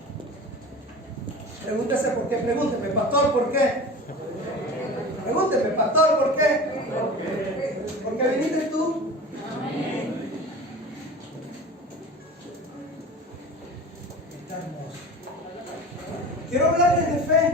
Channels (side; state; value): both; normal; correlation 0.35